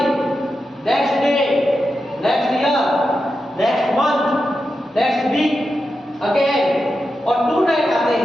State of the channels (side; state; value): both; normal; correlation 0.89